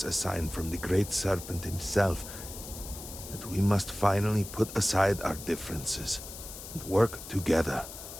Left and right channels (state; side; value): noise; left; hiss, 12 dB below the sound